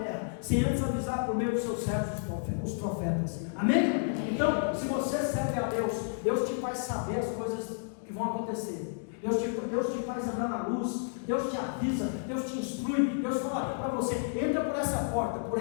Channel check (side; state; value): right; silent; digital silence